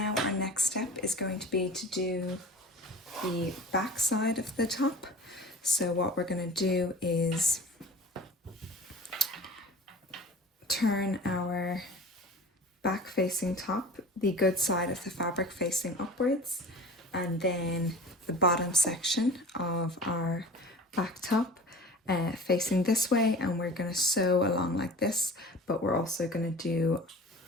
our next step is going to be to do the back side of the top. So what we're going to do is turn our back facing top, the good side of the fabric facing upwards, and then the bottom section of our back top facing this way, and we're going to sew along like this, but we're also going to do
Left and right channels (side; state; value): both; normal; correlation 0.40